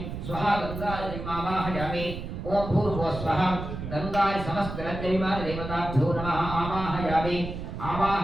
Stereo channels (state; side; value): noise; right; rumble, 7 dB below the sound